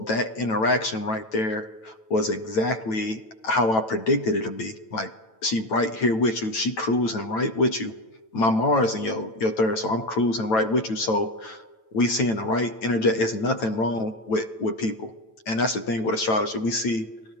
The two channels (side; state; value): right; late; 9.1 ms